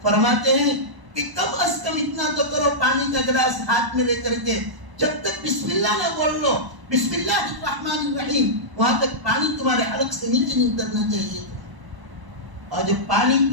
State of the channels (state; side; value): late; left; 1.0 ms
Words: فرماتے ہیں کہ کم از کم اتنا تو کرو، پانی کا گلاس ہاتھ میں لے کر کے جب تک بسم اللہ نہ بول لو، بسم اللہ الرحمن الرحیم، وہاں تک پانی تمہارے حلق سے نیچے نہیں اترنا چاہیے تھا. اور جب پانی